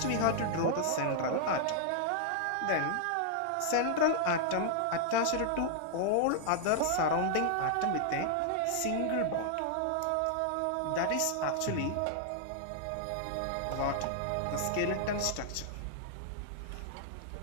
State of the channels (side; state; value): both; different; correlation -0.01